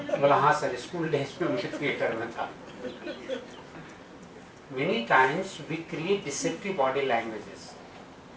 बोला हाँ सर, स्कूल डेज में मुझे थिएटर में था। Many times we create deceptive body languages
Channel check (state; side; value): identical; both; correlation 1.00